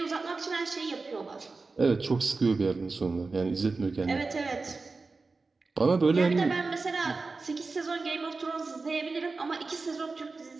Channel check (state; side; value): quieter; left; 3.9 dB